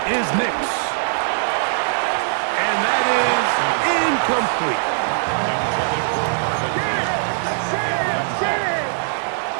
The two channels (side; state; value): left; silent; digital silence